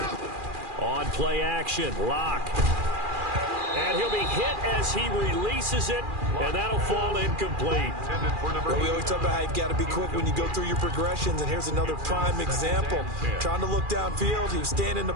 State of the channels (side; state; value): left; late; 2.4 ms